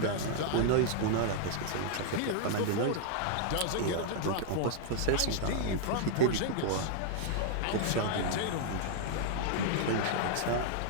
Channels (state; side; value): different; both; correlation 0.00